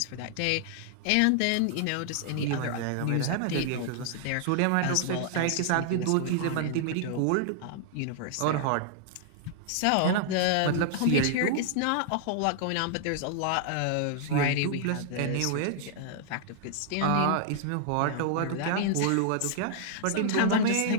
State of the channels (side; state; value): both; different; correlation -0.01